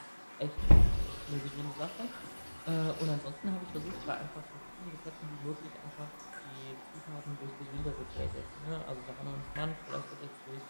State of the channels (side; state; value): both; inverted; correlation -1.00